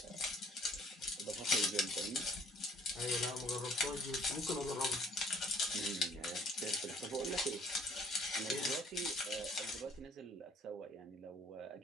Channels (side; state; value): both; normal; correlation 0.59